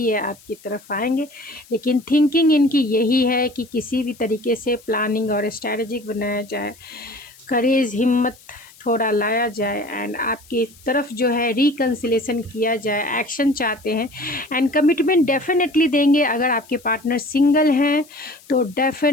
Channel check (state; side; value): noise; left; hiss, 25 dB below the sound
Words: आपकी तरफ आएंगे, लेकिन थिंकिंग इनकी यही है कि किसी भी तरीके से प्लानिंग और स्ट्रैटेजिक बनाया जाए, करेज हिम्मत थोड़ा लाया जाए, एंड आपकी तरफ जो है रिकन्सिलेशन किया जाए, एक्शन चाहते हैं, एंड कमिटमेंट डेफिनेटली देंगे। अगर आपके पार्टनर सिंगल हैं तो